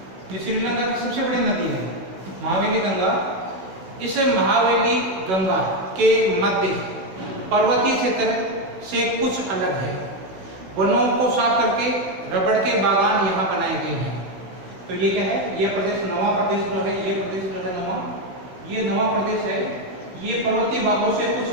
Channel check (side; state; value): left; late; 16 ms